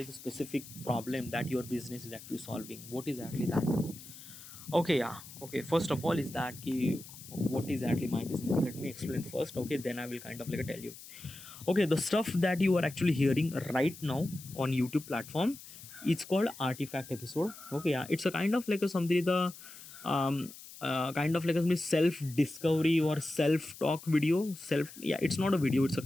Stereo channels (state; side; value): noise; left; hiss, 16 dB below the sound